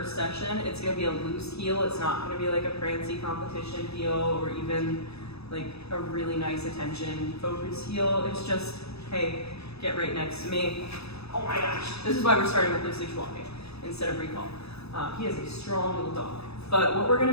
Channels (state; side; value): late; right; 0.79 ms